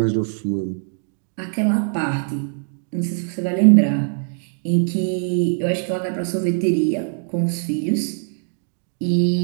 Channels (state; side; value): silent; left; 64 dB below the other